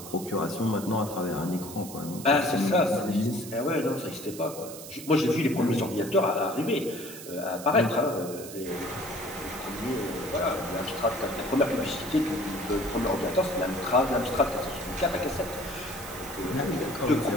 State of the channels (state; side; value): noise; right; hiss, 13 dB below the sound